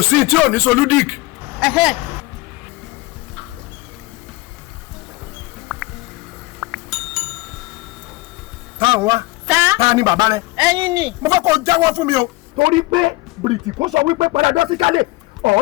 sí tí ò ní soludic. TANWA. ta ni bàbá rẹ. ẹ̀yin ni. mo fẹ́ kó jáwọ́ fún mi o torí pé bìrìtì kò sọ wípé padà dọ́síkálẹ̀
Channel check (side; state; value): right; quieter; 21.7 dB